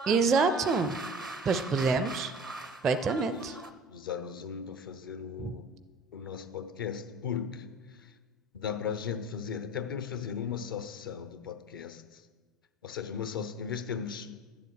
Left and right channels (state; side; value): normal; both; correlation 0.42